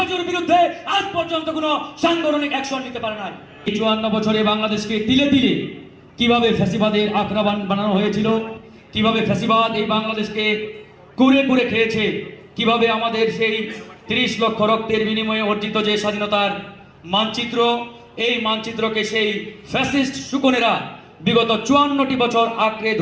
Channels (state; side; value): identical; both; correlation 1.00